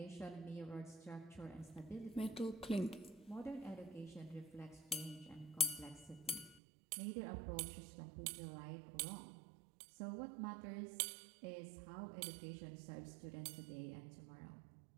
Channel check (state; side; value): drops out; left; at 6.6 s